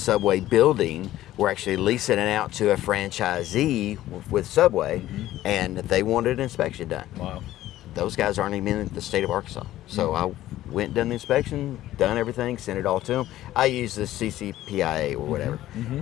building were actually leasing it out to a franchisee with Subway, and they wanted an inspection done. Wow. Those guys aren't even in the state of Arkansas. So I went and done the inspection, done everything, sent it all to them. I use the CCPIA or whatever.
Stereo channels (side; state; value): right; quieter; 14.3 dB